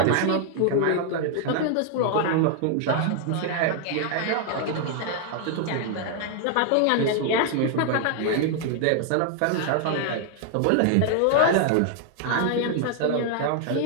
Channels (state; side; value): different; both; correlation 0.00